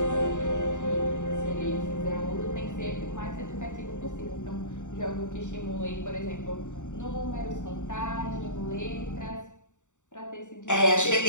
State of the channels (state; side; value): late; right; 0.85 ms